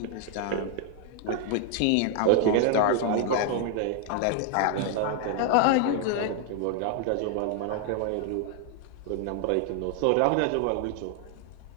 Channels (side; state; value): both; different; correlation 0.00